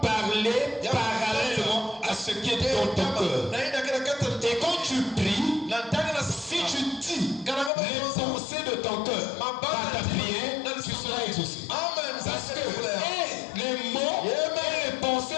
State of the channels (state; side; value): drops out; right; at 7.7 s